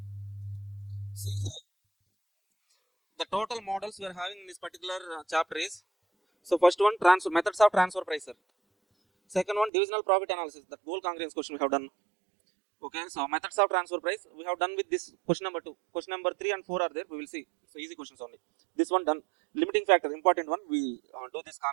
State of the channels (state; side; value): drops out; left; at 9.7 s